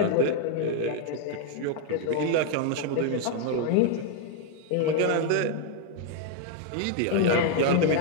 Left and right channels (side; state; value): both; different; correlation 0.00